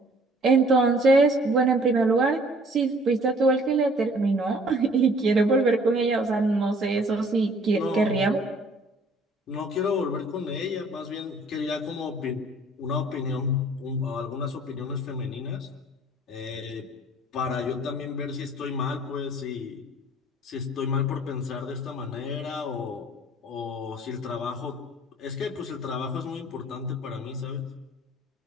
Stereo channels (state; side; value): normal; both; correlation 0.55